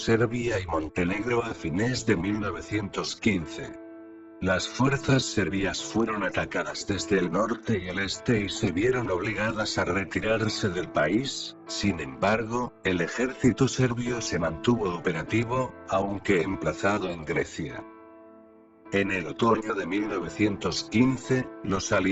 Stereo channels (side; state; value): both; identical; correlation 1.00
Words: y Montenegro a fines de 1915. Las fuerzas serbias fueron atacadas desde el norte y el este y se vieron obligadas a retirarse del país. Sin embargo, el ejército serbio se mantuvo operativo, aunque emplazado en Grecia. En el otoño de 1915, los